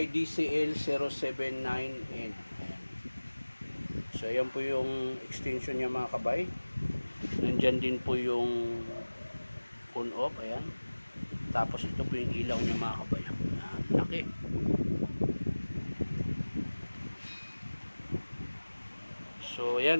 DCL079N. So ayan po yung extension niya mga kabay. Nandyan din po yung on off. Ayan. Tapos ito po yung ilaw niya mga kabay. Laki. So yan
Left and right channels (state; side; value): inverted; both; correlation -1.00